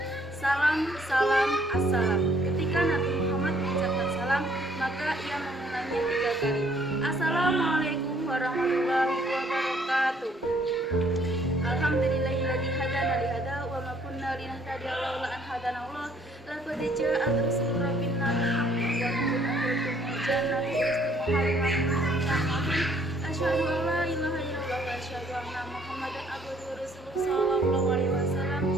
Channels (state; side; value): normal; both; correlation 0.63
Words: Salam, salam, assalam. Ketika Nabi Muhammad mengucapkan salam, maka ia mengulangnya 3 kali. Assalamualaikum warahmatullahi wabarakatuh. Alhamdulillahilladzi hadana li hada wa ma kunna linahtadiya laula an hadana Allah. Laqad ja'at rusul rabbina bil haqqi wa nurun jannati istiqamah. Asyhadu an la ilaha illallah wa asyhadu anna Muhammadan abduhu wa rasuluhu sallallahu alaihi wasallam